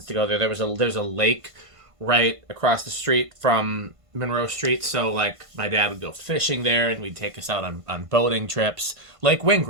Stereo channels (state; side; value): late; left; 1.5 ms